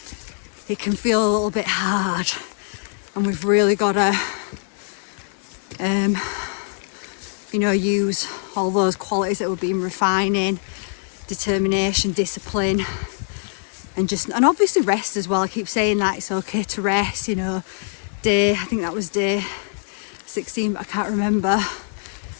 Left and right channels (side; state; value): right; silent; digital silence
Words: it can feel a little bit hard, and we've really got to you know, use all those qualities that we've been refining: determination, discipline, and obviously rest as well. I keep saying that it's okay to rest, you know. I think that was day 16, but I can't remember.